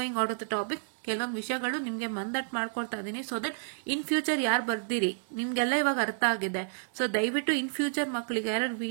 out of the topic. ಕೆಲವೊಂದು ವಿಷಯಗಳು ನಿಮ್ಗೆ ಮಂದಟ್ ಮಾಡ್ಕೊಳ್ತಾ ಇದೀನಿ, ಸೊ ದಟ್ ಇನ್ ಫ್ಯೂಚರ್ ಯಾರು ಬರ್ದಿರಿ ನಿಮ್ಗೆಲ್ಲ ಇವಾಗ ಅರ್ಥ ಆಗಿದೆ. ಸೊ ದಯವಿಟ್ಟು ಇನ್ ಫ್ಯೂಚರ್ ಮಕ್ಕಳಿಗೆ ಯಾರು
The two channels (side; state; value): left; silent; digital silence